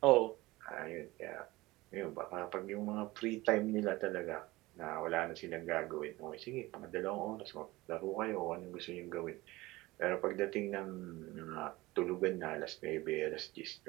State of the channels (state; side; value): quieter; left; 20.0 dB